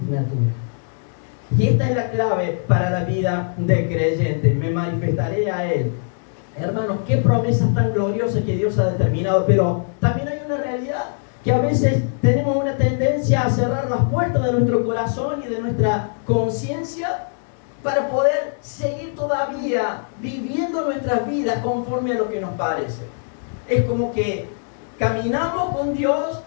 Y esta es la clave para la vida del creyente. Me manifestaré a Él. Hermanos, qué promesas tan gloriosas que Dios ha determinado. Pero también hay una realidad, que a veces tenemos una tendencia a cerrar las puertas de nuestro corazón y de nuestra conciencia para poder seguir todavía viviendo nuestras vidas conforme a lo que nos parece. Es como que caminamos con Dios,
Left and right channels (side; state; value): right; silent; digital silence